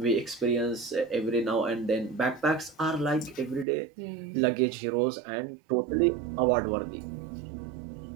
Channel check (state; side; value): drops out; left; at 3.7 s